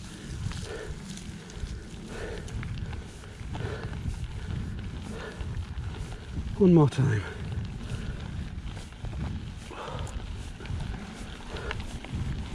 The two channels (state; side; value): identical; both; correlation 1.00